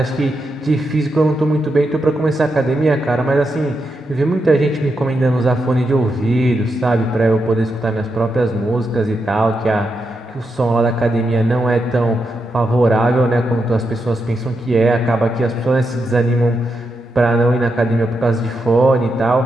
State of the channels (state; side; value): normal; both; correlation 0.84